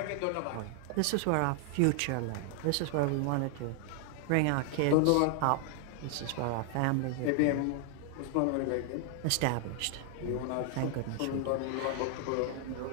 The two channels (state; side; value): different; both; correlation 0.00